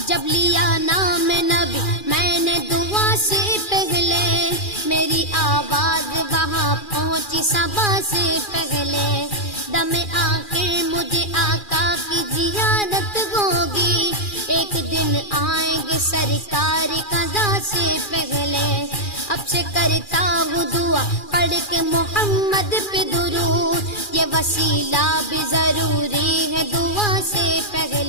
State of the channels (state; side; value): late; right; 2.4 ms